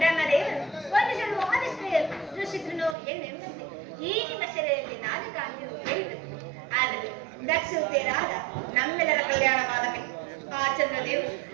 ಒಂದು ಜನ ಆದಿಶ್ರೇಯರು ಸೃಷ್ಟಿಸಿದ್ರು ಎಂಬಂತೆ ಈ ನಿಮ್ಮ ಶರೀರದಲ್ಲಿ ನಾದು ಕಾಂತಿಯು ಹೇಳಿದರು. ಆದರೆ ದಕ್ಷತೆಯರಾದ ನಮ್ಮೆಲ್ಲರ ಕಲ್ಯಾಣವಾದಕ್ಕೆ ಆ ಚಂದ್ರದೇವರು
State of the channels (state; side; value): drops out; left; at 3.0 s